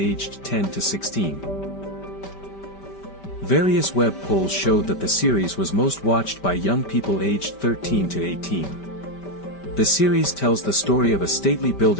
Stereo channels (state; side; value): late; right; 5.1 ms